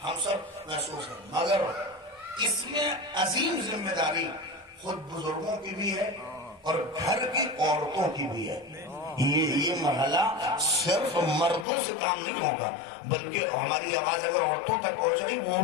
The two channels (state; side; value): drops out; right; at 11.7 s